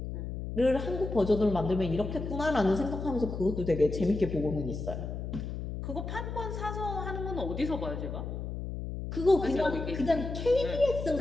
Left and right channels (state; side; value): noise; left; hum, 6 dB below the sound